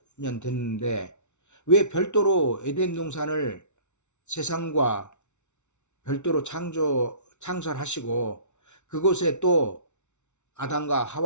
됐는데 왜 별도로 에덴 동산을 세상과 별도로 창설하시고 그곳에 또 아담과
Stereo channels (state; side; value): late; right; 0.83 ms